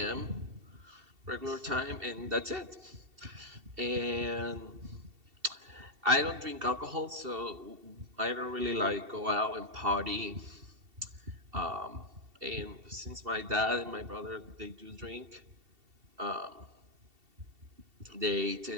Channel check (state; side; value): late; left; 2.7 ms